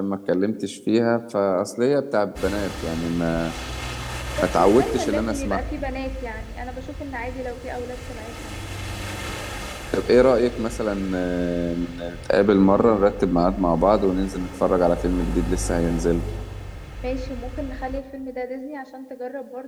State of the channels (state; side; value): identical; both; correlation 1.00